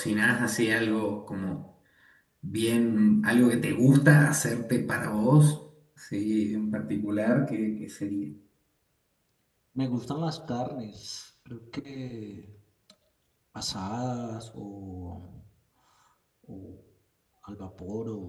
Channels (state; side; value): identical; both; correlation 1.00